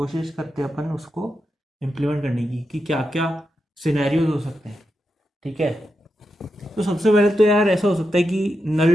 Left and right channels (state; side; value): normal; both; correlation 0.87